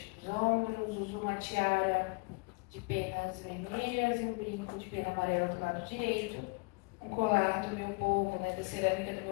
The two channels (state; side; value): quieter; right; 29.0 dB